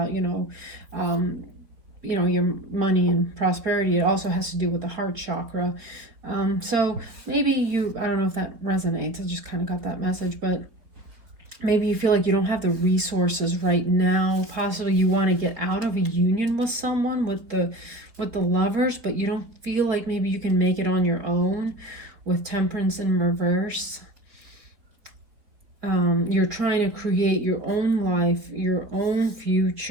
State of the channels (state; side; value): late; left; 4.4 ms